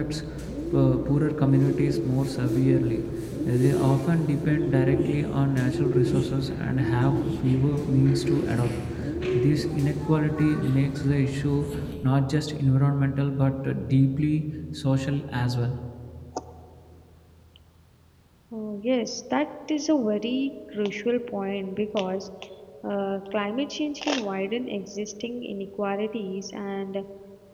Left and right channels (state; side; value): identical; both; correlation 1.00